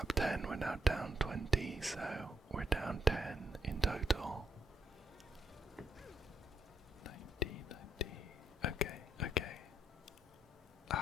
10, we're now down 20, so we're down 10 in total. 90. Okay.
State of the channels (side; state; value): both; normal; correlation 0.75